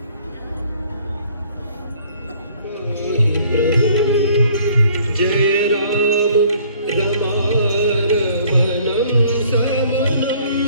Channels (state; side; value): inverted; both; correlation -0.58